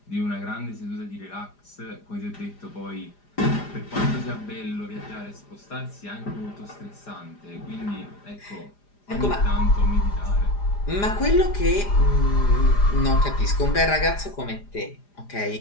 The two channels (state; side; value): late; right; 4.9 ms